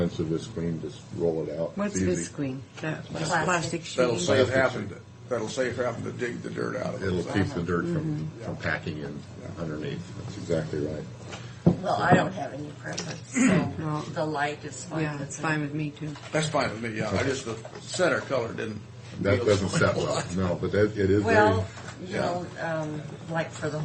Visqueen. Just roll it out. What's It's easy. Visqueen? That Plastic. plastic That'll sheet? save having to dig the dirt out of it. It'll keep the dirt from packing in underneath. That's exactly right. Well, I don't have any preference, so No. the light is fine. Yeah, it's fine with me too. That's fine with me, yeah. I just, the center color didn't. That feel doesn't so set much. well. No, but it is Well, very. you know, like for the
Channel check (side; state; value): both; identical; correlation 1.00